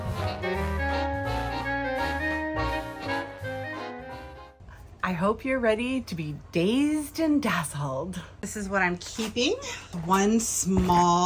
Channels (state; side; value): identical; both; correlation 1.00